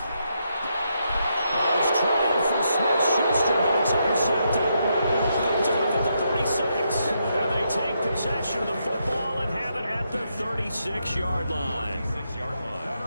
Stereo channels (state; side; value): inverted; both; correlation -0.80